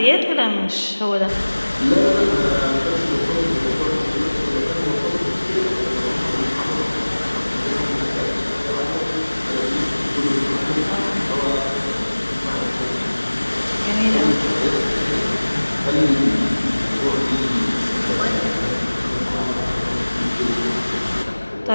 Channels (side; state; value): both; inverted; correlation -1.00